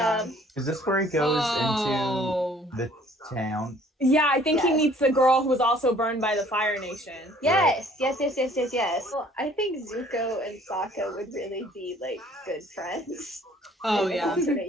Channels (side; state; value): both; normal; correlation 0.56